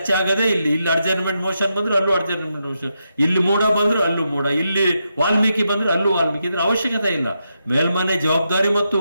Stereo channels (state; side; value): inverted; both; correlation -0.84